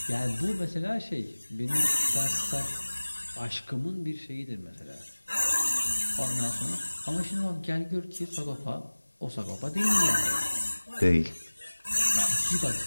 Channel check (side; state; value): both; inverted; correlation -1.00